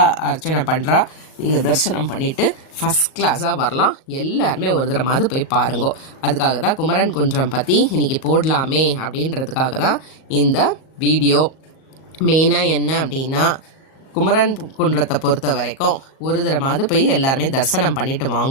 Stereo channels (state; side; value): late; right; 37 ms